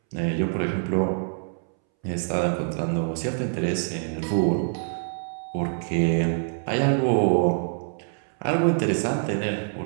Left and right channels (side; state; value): left; silent; 61 dB below the other